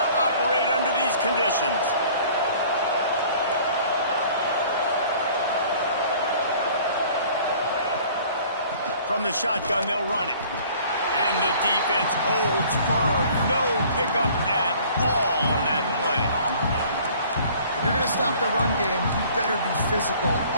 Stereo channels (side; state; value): both; inverted; correlation -0.52